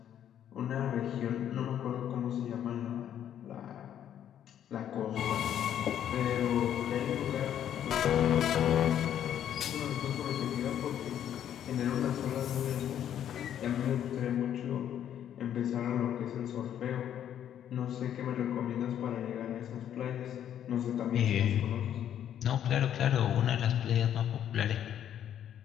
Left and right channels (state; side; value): quieter; right; 10.2 dB